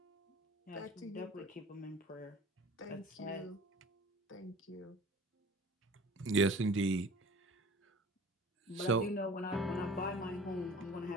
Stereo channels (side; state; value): both; normal; correlation 0.42